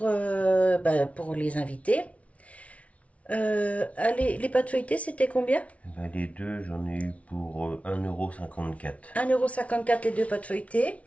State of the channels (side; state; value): right; late; 0.065 ms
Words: les invités. Allez, les pâtes feuilletées, c'était combien? Les deux, j'en ai eu pour 1,54 €. 1,54 € les deux pâtes feuilletées.